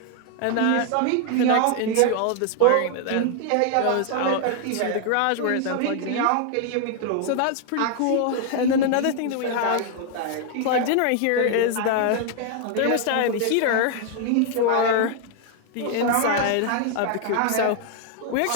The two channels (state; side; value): different; both; correlation 0.00